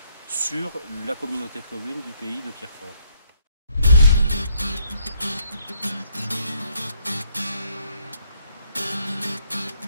sur la communauté de communes du pays de Pierrefort.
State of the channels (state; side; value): inverted; both; correlation -0.69